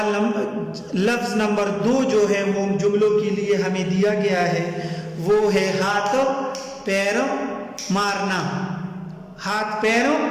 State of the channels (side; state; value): both; identical; correlation 1.00